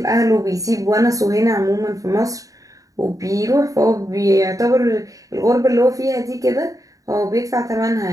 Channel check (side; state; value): left; late; 0.16 ms